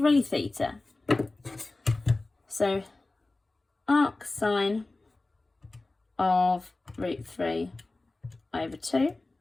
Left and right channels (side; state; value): right; quieter; 3.1 dB